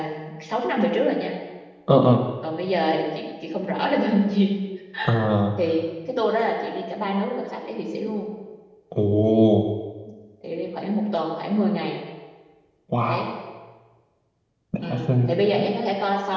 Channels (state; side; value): identical; both; correlation 1.00